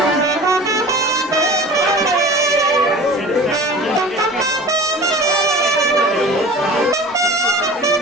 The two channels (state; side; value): normal; both; correlation 0.40